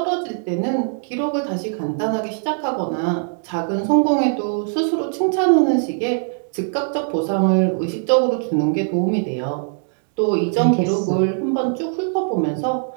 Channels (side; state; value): left; silent; 65 dB below the other